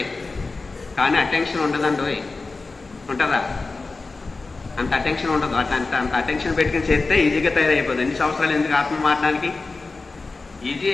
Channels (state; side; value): quieter; right; 3.8 dB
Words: కానీ అటెన్షన్ ఉండదండి. ఉంటుందా? అంత అటెన్షన్ ఉండదు. అంత అటెన్షన్ పెట్టుకుని చేస్తే ఈజీగా తయారైపోతుంది. ఎన్ని సంవత్సరాలు ఎందుకు ఆత్మ మారడానికి?